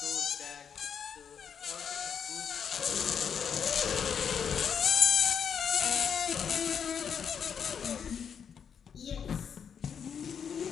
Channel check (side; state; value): right; quieter; 7.4 dB